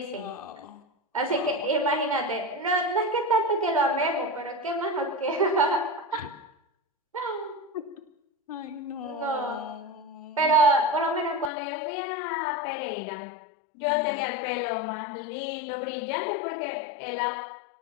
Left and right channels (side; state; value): right; drops out; at 11.5 s